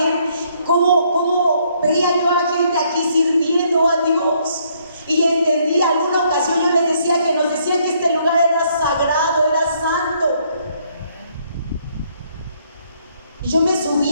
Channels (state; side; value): inverted; both; correlation -0.69